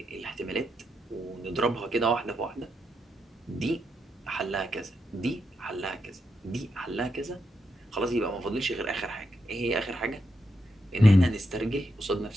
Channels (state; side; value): normal; both; correlation 0.83